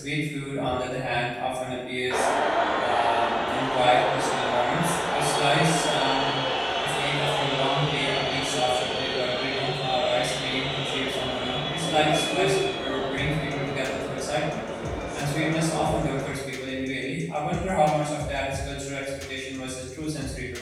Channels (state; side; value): identical; both; correlation 1.00